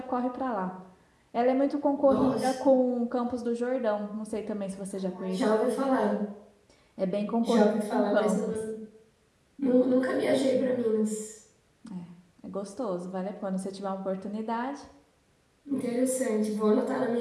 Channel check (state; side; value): identical; both; correlation 1.00